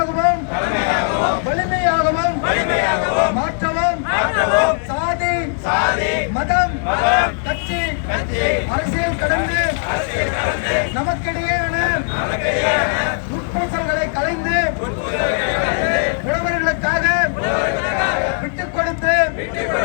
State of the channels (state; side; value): silent; right; 67 dB below the other